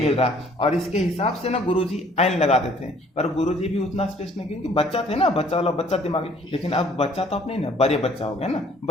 रहा है। और इसके हिसाब से ना गुरुजी एन लगाते थे, पर गुरुजी भी उतना स्पेस नहीं, क्योंकि बच्चा थे ना, बच्चा दिमागी। लेकिन अब बच्चा तो अपने ना बड़े बच्चा हो गया ना,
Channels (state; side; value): normal; both; correlation 0.58